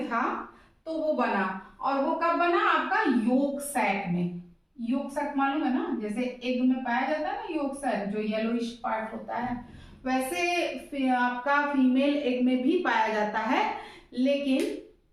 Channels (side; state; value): both; identical; correlation 1.00